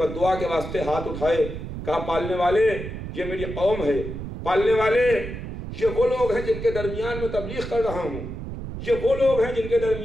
دعا کے واسطے ہاتھ اٹھائے، کہا پالنے والے یہ میری قوم ہے، پالنے والے یہ وہ لوگ ہیں جن کے درمیان میں تبلیغ کر رہا ہوں، یہ وہ لوگ ہیں جن کے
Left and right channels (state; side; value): noise; right; rumble, 8 dB below the sound